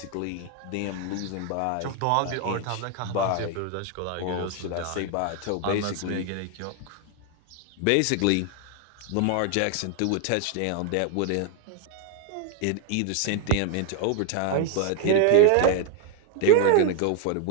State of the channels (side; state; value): both; different; correlation 0.00